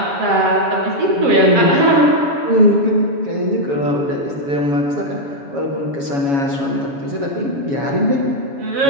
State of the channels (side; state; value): left; late; 7.2 ms